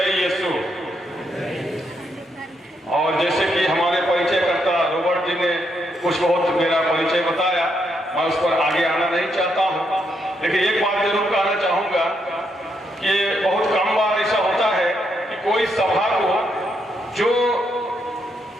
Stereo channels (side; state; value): both; normal; correlation 0.78